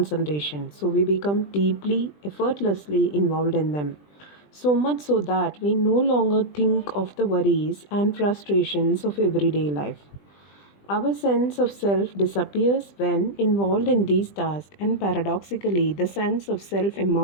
so we become deeply, effortlessly involved in them. So much so that we no longer think of the worries and frustrations of everyday life. Our sense of self disappears when involved in these tasks, and paradoxically, the sense of self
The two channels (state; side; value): late; right; 20 ms